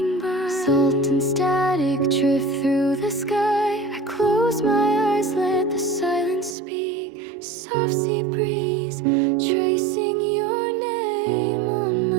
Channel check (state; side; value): drops out; left; at 6.6 s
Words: by. Salt and static drift through the sky. I close my eyes, let the silence speak. Soft sea breeze, tracing your name on